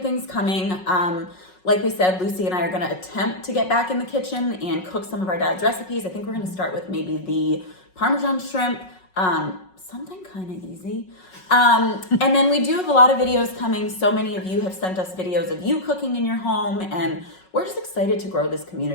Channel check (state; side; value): late; right; 5.4 ms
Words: coming. Like we said, Lucy and I are going to attempt to get back in the kitchen and cook some of our dad's recipes. I think we're going to start with maybe the Parmesan shrimp, something kind of easy. And then we do have a lot of videos coming. So many of you have sent us videos of you cooking in your home, and we're just excited to grow this